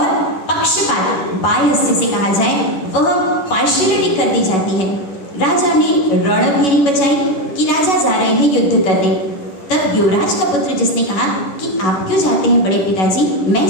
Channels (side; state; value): right; late; 11 ms